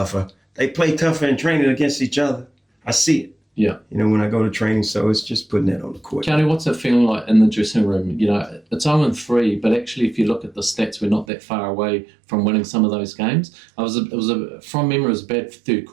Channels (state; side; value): drops out; left; at 11.2 s